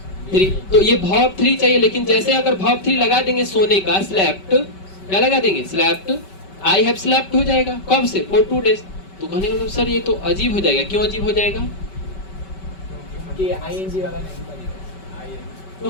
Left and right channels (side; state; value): right; late; 5.2 ms